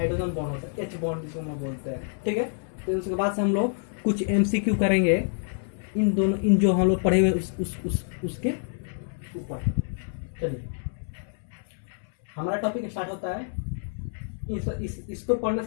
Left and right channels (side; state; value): right; silent; 60 dB below the other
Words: बॉन्ड होता है, एच बॉन्ड जिसको हम बोलते हैं, ठीक है। तो उसके बाद से हम लोग कुछ एमसीक्यू करेंगे इन जो हम लोग पढ़े हुए उसके ऊपर। चलिए हमारा टॉपिक स्टार्ट होता है। इसको पढ़ने